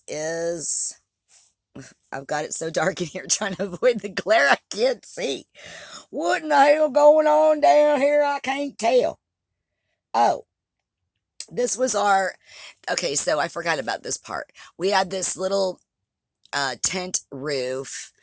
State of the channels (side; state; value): both; identical; correlation 1.00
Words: is, I've got it so dark in here trying to avoid the glare, I can't see. What in the hell going on down here? I can't tell. Oh, this was okay, so I forgot about this part. We had this little tent roof,